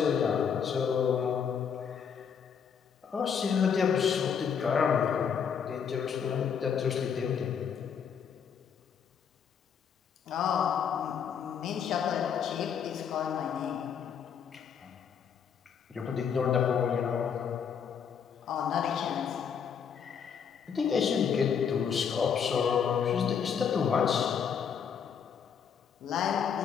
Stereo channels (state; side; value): quieter; right; 7.3 dB